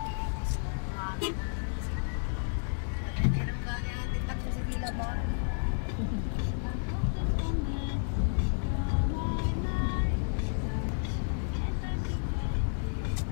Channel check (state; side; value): silent; right; digital silence